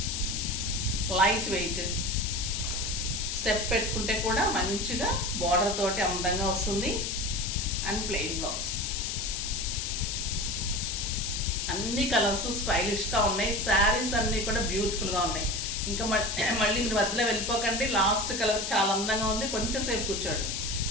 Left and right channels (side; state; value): left; noise; hiss, 3 dB below the sound